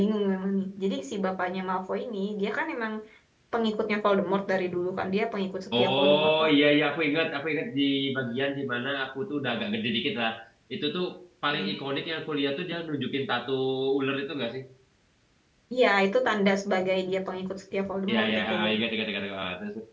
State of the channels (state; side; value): identical; both; correlation 1.00